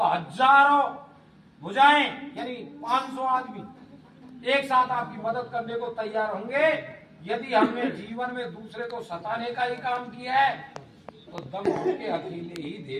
हजारों भुजाएं यानी 500 आदमी एक साथ आपकी मदद करने को तैयार होंगे। यदि हमने जीवन में दूसरे को सताने का ही काम किया है तो दम होके अकेले ही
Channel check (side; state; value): both; identical; correlation 1.00